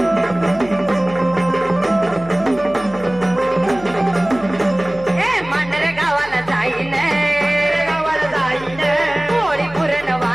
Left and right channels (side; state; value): left; noise; hum, 18 dB below the sound